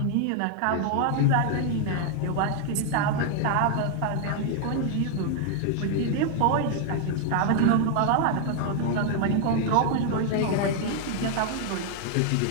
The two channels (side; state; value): both; different; correlation 0.00